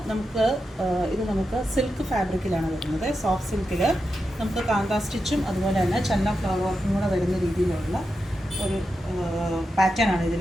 നമുക്ക് സിൽക്ക് ഫാബ്രിക്കിലാണ് വരുന്നത്. സോഫ്റ്റ് സിൽക്കിൽ നമുക്ക് കാന്താ സ്റ്റിച്ചും അതുപോലെ തന്നെ ചന്ന ഫ്ലവർ വർക്കും കൂടെ വരുന്ന രീതിയിലുള്ള ഒരു പാറ്റേൺ ആണ്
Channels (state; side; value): normal; both; correlation 0.88